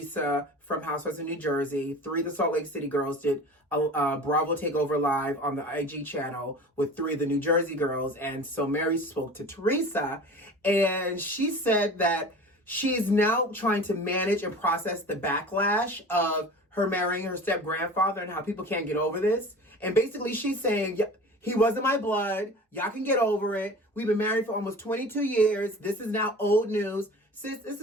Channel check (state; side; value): normal; both; correlation 0.38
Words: from Housewives of New Jersey. 3 of the Salt Lake City girls did a Bravo Takeover Live on the IG channel with 3 of the New Jersey girls. And so Mary spoke to Teresa, and she said that she's now trying to manage and process the backlash of her marrying her step-grandfather and how people can't get over this. And basically she's saying, he wasn't my blood. Y'all can get over it. We've been married for almost 22 years. This is now old news. Sis, this